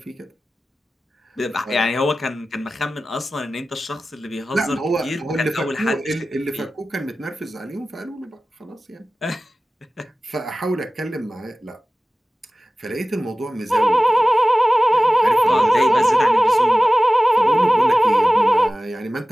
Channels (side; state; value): both; normal; correlation 0.96